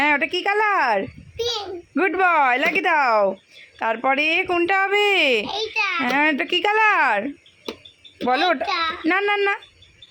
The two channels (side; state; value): both; identical; correlation 1.00